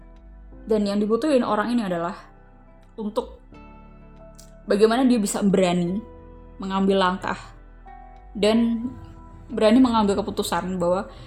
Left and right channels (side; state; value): both; identical; correlation 1.00